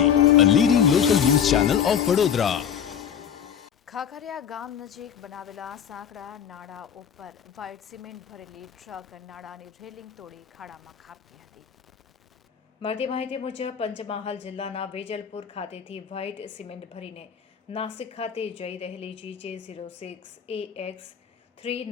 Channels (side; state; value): right; quieter; 8.4 dB